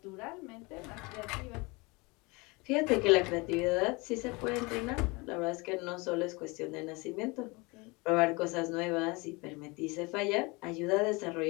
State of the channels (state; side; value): quieter; right; 26.2 dB